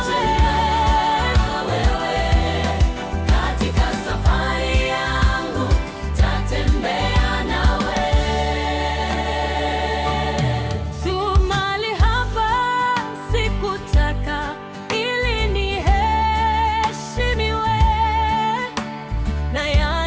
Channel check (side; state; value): both; identical; correlation 1.00